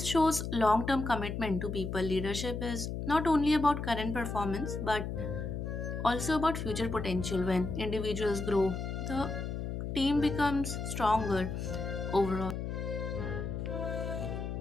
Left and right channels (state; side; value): noise; left; hum, 4 dB below the sound